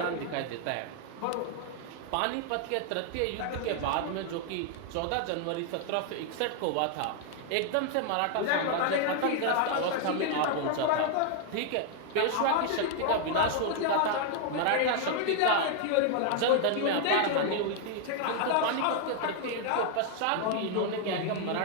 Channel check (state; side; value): different; both; correlation 0.00